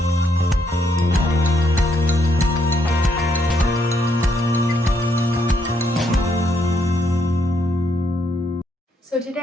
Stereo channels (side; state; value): both; normal; correlation 0.75